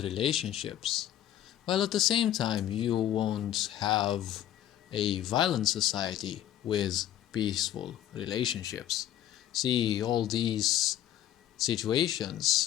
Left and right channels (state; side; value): quieter; right; 12.0 dB